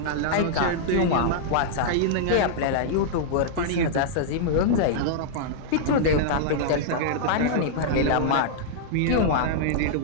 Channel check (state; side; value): different; both; correlation -0.02